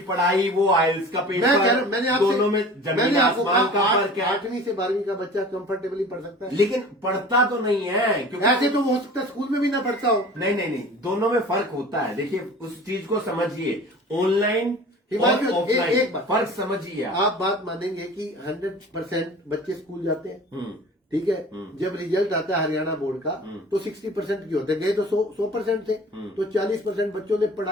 पढ़ाई, वो आइल्स का पेपर, दोनों में जमीन आसमान का फर्क है। 8वीं से 12वीं का बच्चा कंफर्टेबली पढ़ सकता है, लेकिन पढ़ता तो नहीं है, क्योंकि ऐसे तो हो सकता है स्कूल में भी ना पढ़ता हो। नहीं, दोनों में फर्क होता है। देखिए उस चीज को समझिए, ऑनलाइन और ऑफलाइन फर्क समझिए। आप बात मानेंगे कि 100% बच्चे स्कूल जाते हैं, ठीक है। जब रिजल्ट आता है हरियाणा बोर्ड का तो 60% की होते गए, तो 100% थे, तो 40% बच्चों ने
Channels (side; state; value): both; normal; correlation 0.42